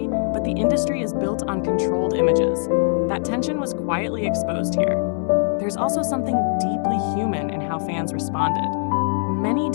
but the industry is built on controlled images. That tension was quietly exposed here. There's also something deeply human in how fans responded. Many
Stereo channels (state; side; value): silent; right; 60 dB below the other